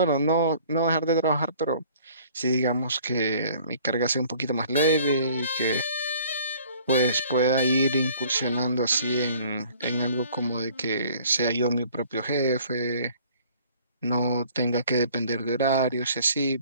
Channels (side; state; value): both; inverted; correlation -0.54